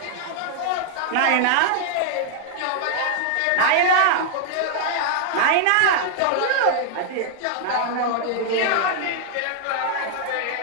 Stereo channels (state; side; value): different; both; correlation -0.01